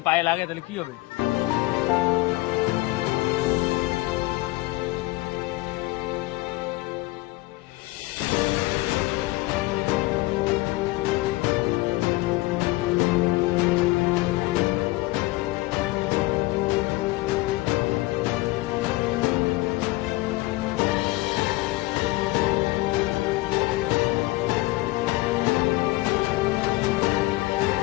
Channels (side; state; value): right; quieter; 20.4 dB